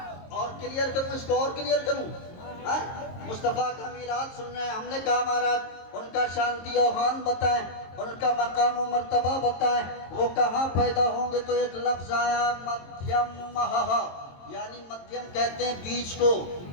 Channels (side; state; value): right; late; 22 ms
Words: और क्लियर करूं इसको, और क्लियर करूं, मुस्तफ़ा का मीलाद सुन रहे हैं। हमने कहा महाराज उनका शांति आह्वान बताएं, उनका मकाम और मर्तबा बताएं, वो कहाँ पैदा होंगे। तो एक लफ्ज आया मध्यम, यानी मध्यम कहते हैं बीच को,